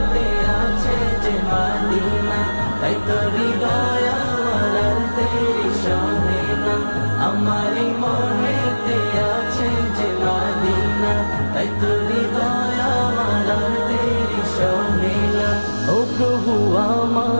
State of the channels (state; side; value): inverted; both; correlation -1.00